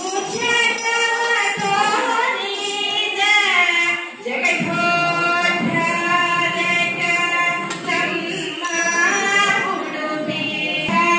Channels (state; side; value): identical; both; correlation 1.00